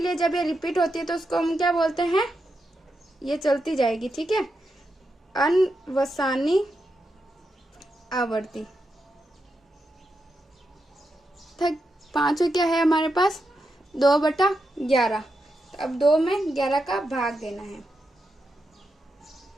जब ये रिपीट होती है तो उसको हम क्या बोलते हैं, ये चलती जाएगी। ठीक है, अनवसानी आवर्ती। 5 क्या है हमारे पास, 2/11। तो अब 2 में 11 का भाग देना है।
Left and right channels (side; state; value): both; normal; correlation 0.86